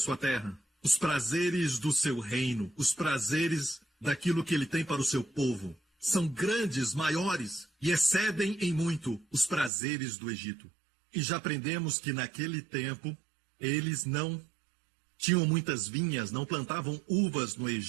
terra, os prazeres do seu reino, os prazeres daquilo que ele tem para o seu povo, são grandes, maiores e excedem em muito os prazeres do Egito. E já aprendemos que naquele tempo eles não tinham muitas vinhas, não plantavam uvas no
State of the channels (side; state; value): left; drops out; at 9.7 s